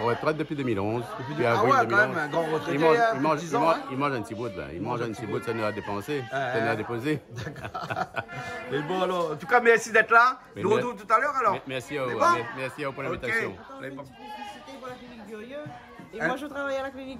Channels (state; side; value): identical; both; correlation 1.00